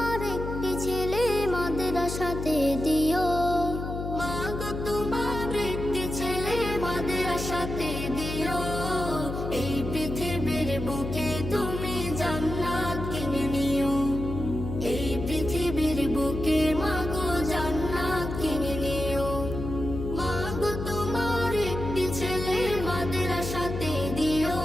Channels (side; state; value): left; noise; hum, 5 dB below the sound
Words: একটি ছেলে মাদ্রাসাতে দিও, মাগো তোমার একটি ছেলে মাদ্রাসাতে দিও। এই পৃথিবীর বুকে তুমি জান্নাত কিনে নিও, এই পৃথিবীর বুকে মাগো জান্নাত কিনে নিও। মাগো তোমার একটি ছেলে মাদ্রাসাতে দিও,